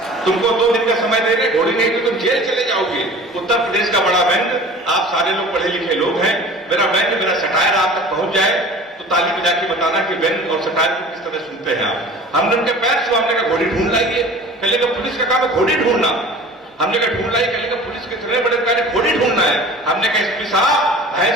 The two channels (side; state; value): both; normal; correlation 0.42